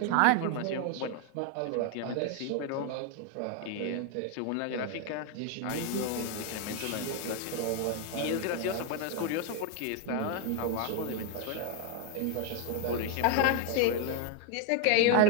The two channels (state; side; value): different; both; correlation 0.01